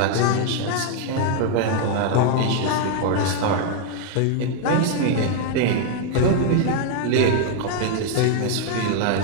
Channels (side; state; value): both; different; correlation 0.00